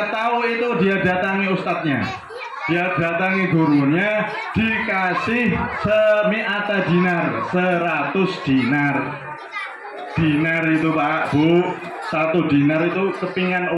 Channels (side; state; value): both; identical; correlation 1.00